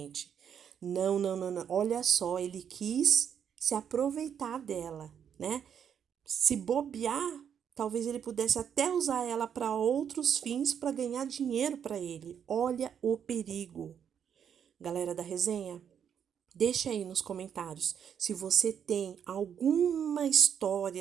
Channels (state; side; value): quieter; left; 8.2 dB